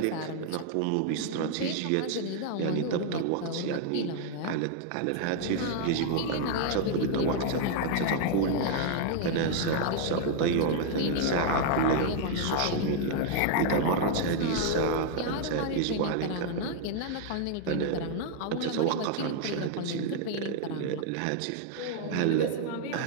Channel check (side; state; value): both; different; correlation 0.00